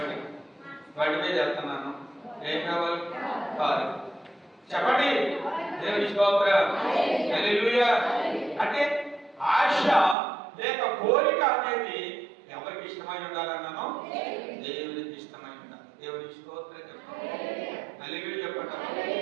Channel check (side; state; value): left; drops out; at 10.2 s